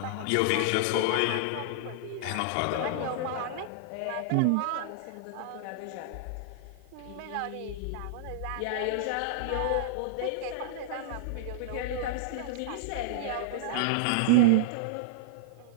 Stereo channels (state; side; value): different; both; correlation -0.01